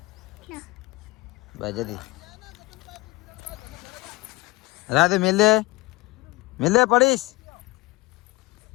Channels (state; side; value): quieter; right; 22.6 dB